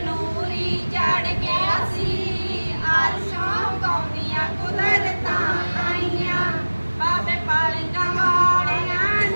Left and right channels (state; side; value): inverted; both; correlation -1.00